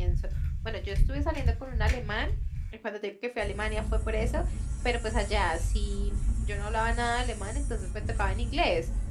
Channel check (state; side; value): identical; both; correlation 1.00